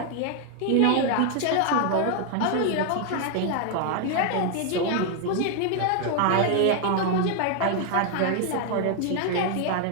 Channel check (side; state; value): both; different; correlation 0.01